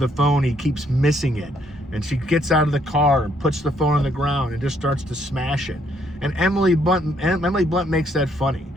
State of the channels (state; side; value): normal; both; correlation 0.70